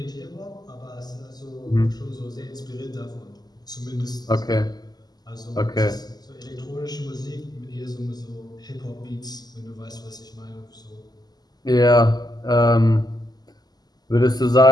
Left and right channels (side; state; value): right; late; 0.20 ms